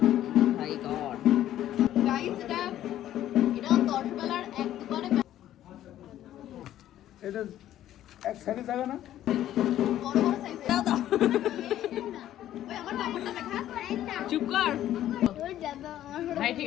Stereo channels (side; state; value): right; quieter; 12.5 dB